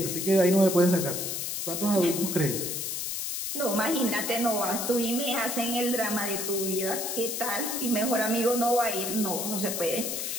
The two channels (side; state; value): left; noise; hiss, 3 dB below the sound